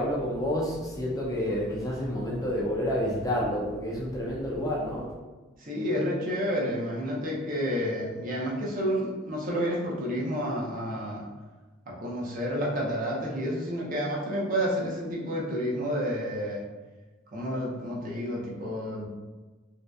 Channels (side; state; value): both; normal; correlation 0.38